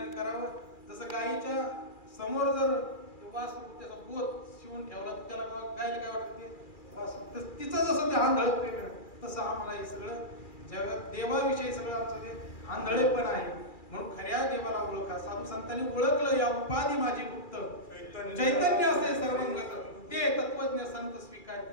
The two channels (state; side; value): late; right; 2.4 ms